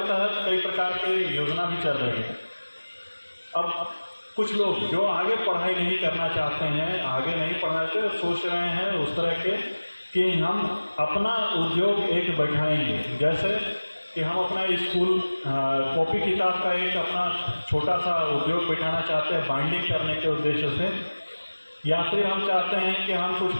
तहत कई प्रकार के योजना भी चल रही है। अब कुछ लोग जो आगे पढ़ाई नहीं करना चाहते हैं, आगे नहीं पढ़ना चाहते, सोच रहे हैं उस तरह के कि हम अपना उद्योग एक बैठाएंगे, जैसे कि हम अपना स्कूल कॉपी किताब का एक अपना छोटा सा उद्योग बैठाना चाहते हैं बाइंडिंग करने के उद्देश्य से। या फिर हम चाहते हैं कि हम कुछ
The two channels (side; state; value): both; inverted; correlation -1.00